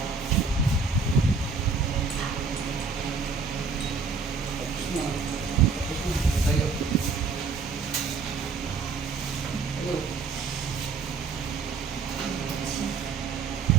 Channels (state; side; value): quieter; left; 4.7 dB